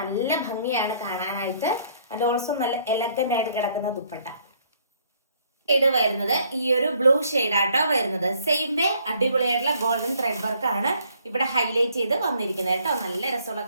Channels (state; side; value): inverted; both; correlation -0.64